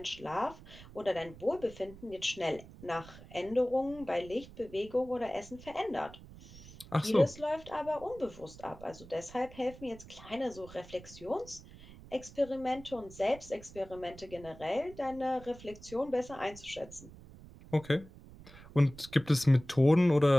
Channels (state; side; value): noise; right; rumble, 18 dB below the sound